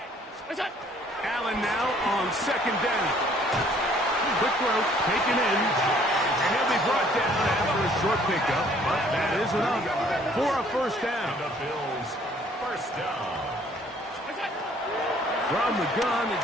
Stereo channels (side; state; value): both; normal; correlation 0.60